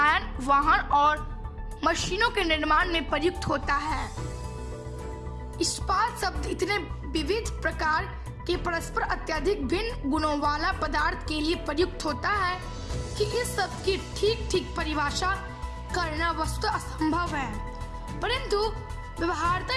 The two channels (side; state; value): both; identical; correlation 1.00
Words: वाहन और मशीनों के निर्माण में प्रयुक्त होता है। इस्पात शब्द इतने विविध प्रकार के परस्पर अत्यधिक भिन्न गुणों वाला पदार्थ के लिए प्रयुक्त होता है कि इस शब्द की ठीक परिभाषा करना वस्तुतः असंभव है, परंतु